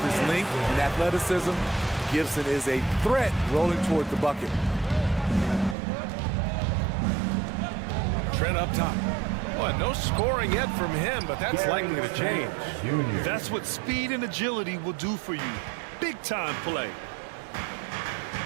his length and athleticism, Gibson is a threat rolling toward the bucket. Trent up top. Well, no scoring yet from him, but that's likely to change. That's what speed and agility will do for you. Big time play.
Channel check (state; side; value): drops out; left; at 5.8 s